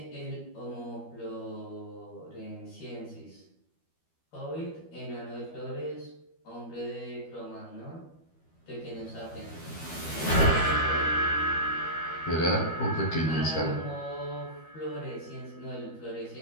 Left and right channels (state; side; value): late; right; 12 ms